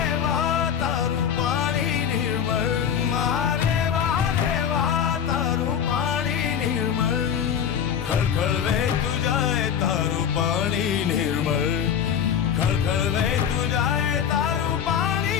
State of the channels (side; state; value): right; quieter; 8.2 dB